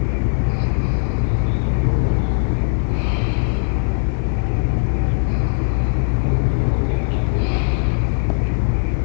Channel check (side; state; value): right; silent; digital silence